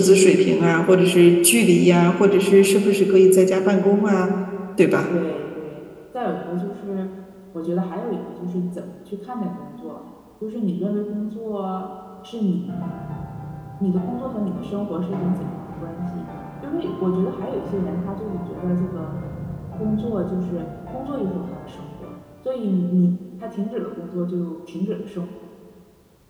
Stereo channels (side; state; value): both; identical; correlation 1.00